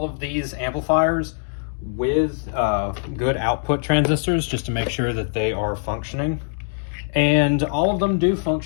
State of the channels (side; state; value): right; silent; 64 dB below the other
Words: of these amplifiers with good output transistors just to make sure that they are functioning, and all of them do